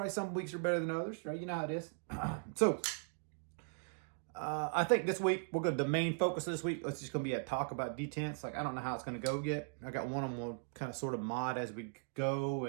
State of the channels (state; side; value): silent; left; digital silence